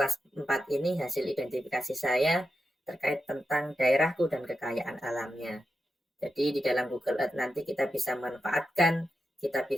4 ini hasil identifikasi saya terkait tentang daerahku dan kekayaan alamnya. Jadi di dalam Google Earth nanti kita bisa manfaatkan, kita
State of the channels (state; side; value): normal; both; correlation 0.88